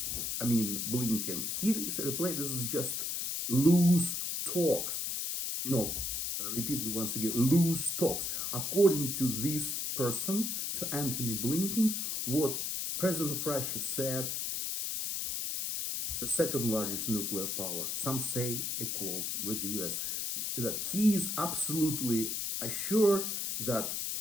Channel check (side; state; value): left; noise; hiss, 1 dB below the sound